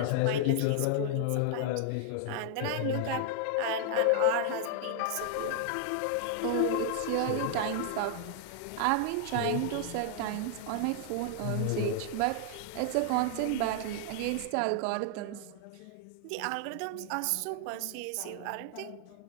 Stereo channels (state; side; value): different; both; correlation 0.00